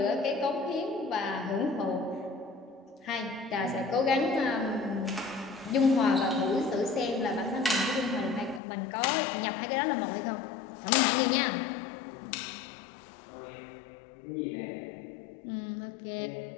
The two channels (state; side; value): drops out; right; at 8.6 s